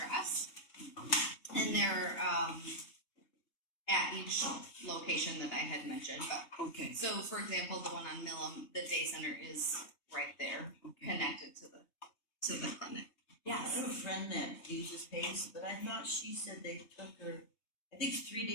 and they're at each location that I had mentioned. But Okay. so, for example, the one on Millam, the day center is right there, connected to the clinic. I have a friend that uses PACE, but I thought she said they took her, I think 3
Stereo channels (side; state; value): right; late; 3.2 ms